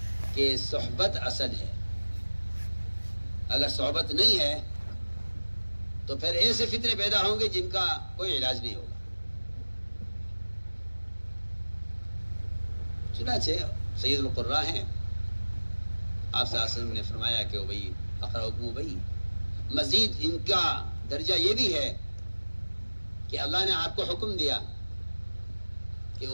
کہ صحبت اصل ہے. اگر صحبت نہیں ہے تو پھر ایسے فتنے پیدا ہوں گے جن کا کوئی علاج نہیں ہوگا. چنانچہ سید القراء ہیں، آپ صلی اللہ علیہ وسلم نے فرمایا کہ ابی اقرأکم ابی، مزید ان کا درجہ یہ بھی ہے کہ اللہ نے آپ کو حکم دیا کہ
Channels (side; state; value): both; inverted; correlation -1.00